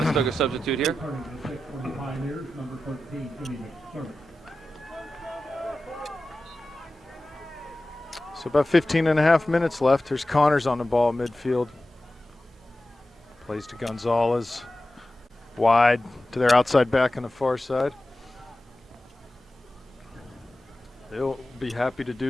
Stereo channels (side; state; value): both; normal; correlation 0.94